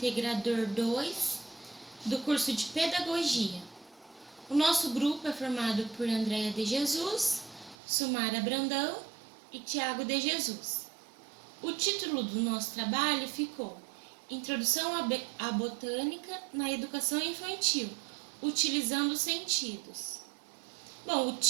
2 do curso de Pedagogia. O nosso grupo é formado por Andréia de Jesus, Sumara Brandão e Tiago de Jesus. O título do nosso trabalho ficou Introdução à Botânica na Educação Infantil, utilizando os sentidos. Bom, o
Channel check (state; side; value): drops out; left; at 7.8 s